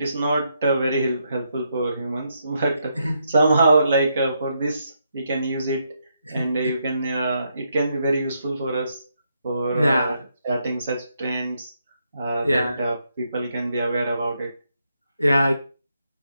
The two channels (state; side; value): inverted; both; correlation -0.78